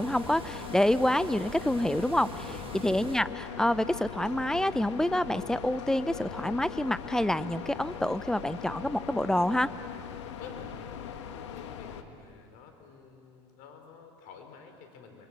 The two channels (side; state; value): both; normal; correlation 0.91